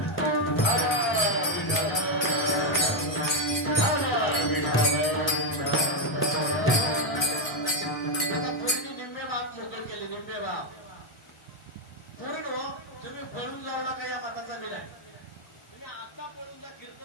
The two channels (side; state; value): both; normal; correlation 0.04